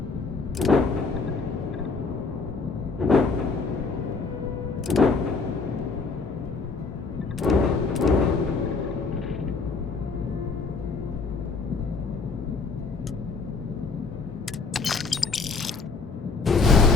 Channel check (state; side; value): quieter; right; 4.4 dB